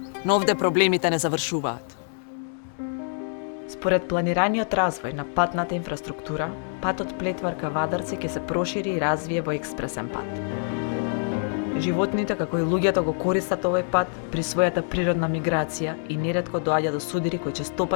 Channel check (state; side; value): silent; right; 61 dB below the other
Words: Но овде проблемите не завршуваат. Според планираниот развој на патната инфраструктура, патот Плетвар ка Вадарци ќе се прошири и развие во експресен пат. Животните, како и луѓето, го користат овој пат при својата природна миграција и неретко доаѓа до судири кои